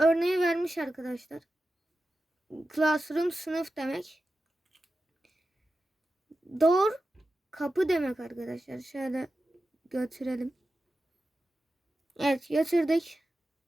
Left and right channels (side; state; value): both; normal; correlation 0.92